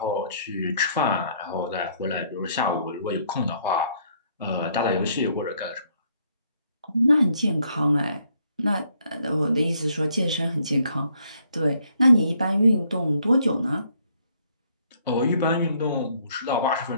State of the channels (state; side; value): inverted; both; correlation -0.68